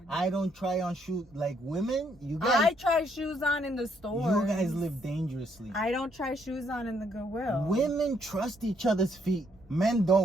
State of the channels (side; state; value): both; normal; correlation 0.71